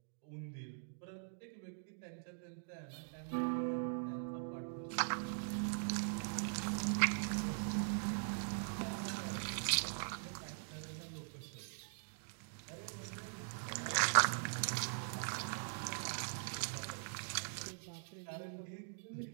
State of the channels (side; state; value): left; silent; digital silence